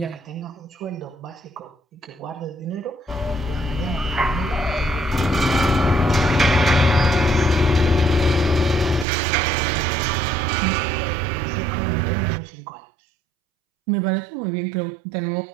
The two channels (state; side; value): drops out; left; at 9.1 s